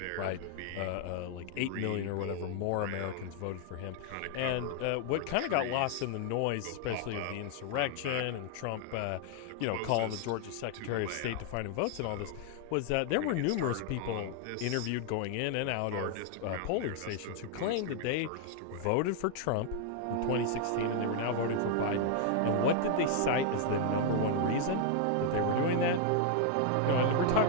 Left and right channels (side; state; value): both; different; correlation 0.00